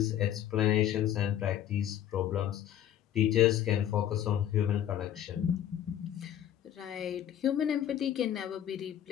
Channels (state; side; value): quieter; right; 10.8 dB